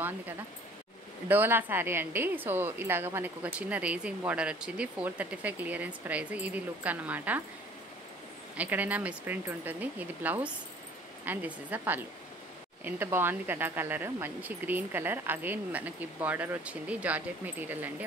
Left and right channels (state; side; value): normal; both; correlation 0.51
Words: కదా. డోలా శారీ అండి. సో ఇలాగ మనకు ఒక చిన్న రేజింగ్ బార్డర్ వచ్చింది. 435 క్లియరెన్స్ ప్రైస్. ఇది లుక్ అన్నమాట. ఎక్కడైనా మిస్ప్రింట్ ఉంటుంది. ఇది blouse and this is the పళ్ళు. ఎంత బాగుంది కదా కలర్, మంచి గ్రీన్ కలర్. అగైన్ మనకి బార్డర్ వచ్చింది. జార్జెట్ మెటీరియల్ అండి.